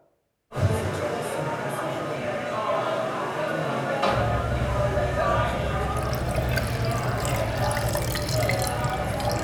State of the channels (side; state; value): both; identical; correlation 1.00